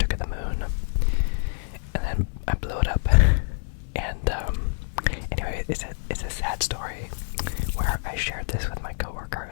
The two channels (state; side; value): silent; right; digital silence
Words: of the moon, and then I blew it up. And anyway, it's a sad story where I shared this with my